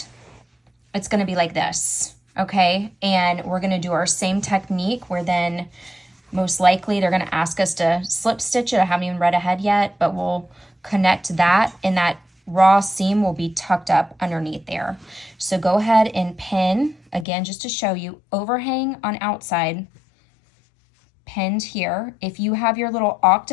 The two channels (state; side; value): drops out; right; at 17.2 s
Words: it's gonna be like this, okay? And we're gonna do our same technique where then most likely they're gonna ask us to slip stitch it. I haven't even read ahead yet, but we'll connect that, and that raw seam will be tucked up underneath there. So go ahead and pin, again, just to show you, overhang on outside, pinned here. If you have your little